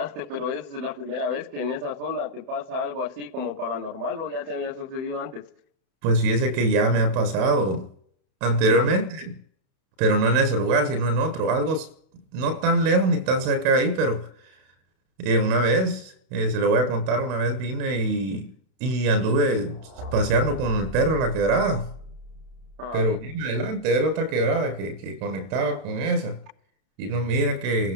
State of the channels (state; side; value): late; left; 32 ms